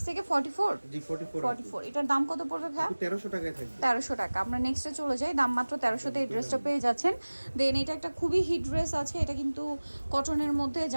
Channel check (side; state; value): both; inverted; correlation -1.00